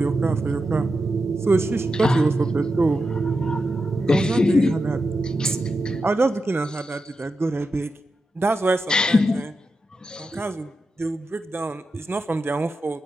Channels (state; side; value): normal; both; correlation 0.89